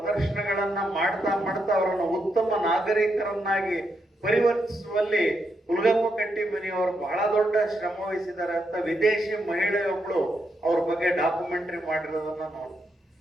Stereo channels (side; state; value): both; normal; correlation 0.81